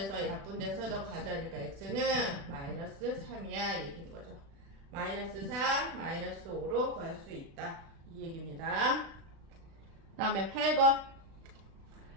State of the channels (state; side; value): late; left; 36 ms